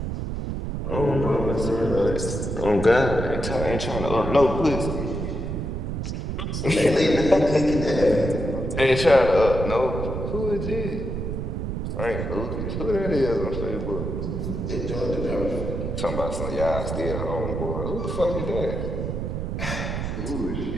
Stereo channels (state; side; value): noise; right; rumble, 3 dB below the sound